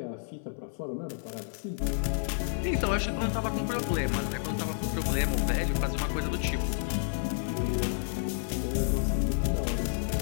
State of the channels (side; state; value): right; silent; 58 dB below the other